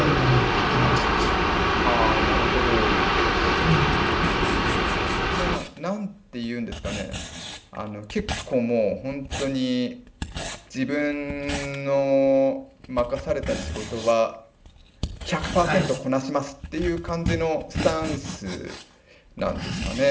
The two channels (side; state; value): both; identical; correlation 1.00